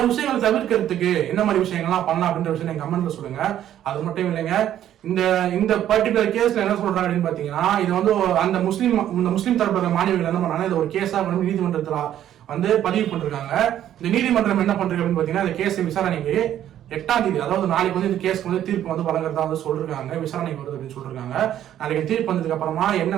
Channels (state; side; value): quieter; left; 11.3 dB